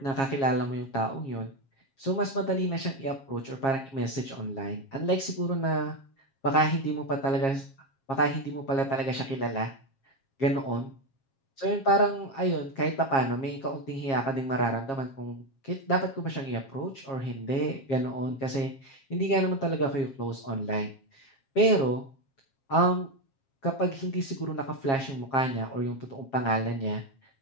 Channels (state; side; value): late; right; 7.4 ms